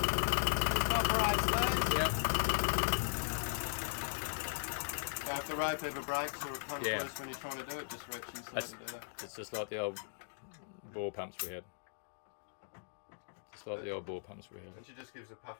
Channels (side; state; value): right; silent; digital silence